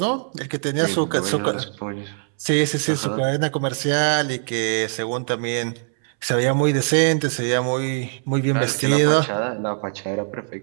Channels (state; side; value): silent; left; 64 dB below the other